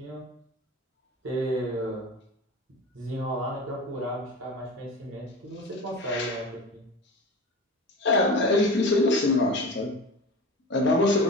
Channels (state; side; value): normal; both; correlation 0.32